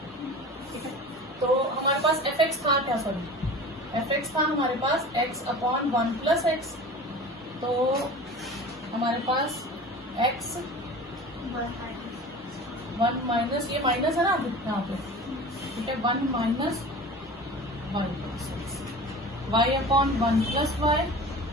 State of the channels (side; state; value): both; normal; correlation 0.37